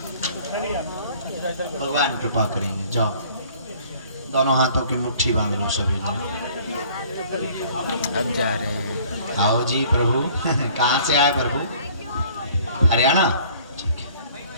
भगवान कृपा करेंगे। जाओ, दोनों हाथों की मुट्ठी बांध लो सभी लोग। अब जा रहे हैं। आओ जी प्रभु। कहाँ से आए प्रभु? हरियाणा। ठीक है।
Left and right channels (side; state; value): both; inverted; correlation -0.54